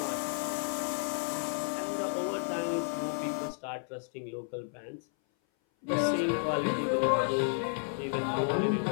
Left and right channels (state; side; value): silent; right; 56 dB below the other